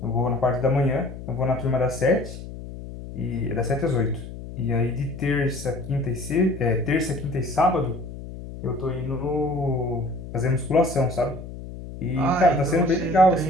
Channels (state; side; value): noise; left; hum, 11 dB below the sound